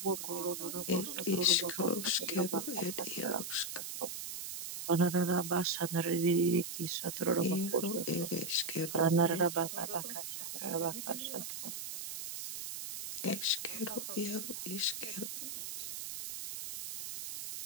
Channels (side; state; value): right; noise; hiss, 6 dB below the sound